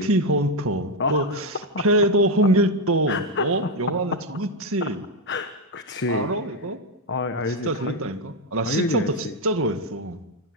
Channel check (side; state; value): both; normal; correlation 0.06